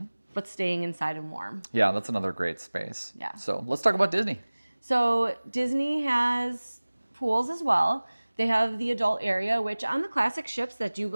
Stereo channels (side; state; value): both; inverted; correlation -1.00